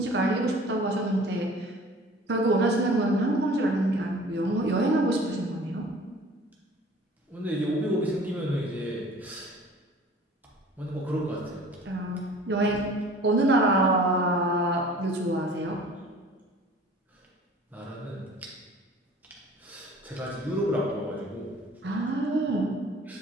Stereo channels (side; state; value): both; normal; correlation 0.47